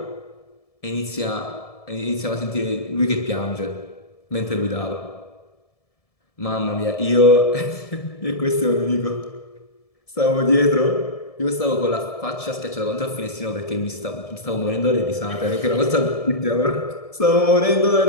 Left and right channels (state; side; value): late; right; 1.7 ms